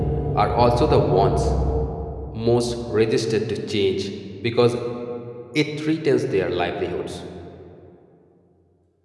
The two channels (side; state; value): both; identical; correlation 1.00